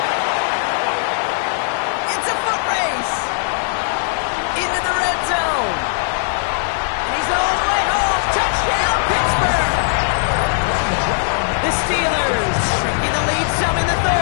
It's a foot race. Into the red zone. And he's all the way home. Touchdown, Pittsburgh. The Steelers shrinking the lead some in the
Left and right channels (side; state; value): right; silent; digital silence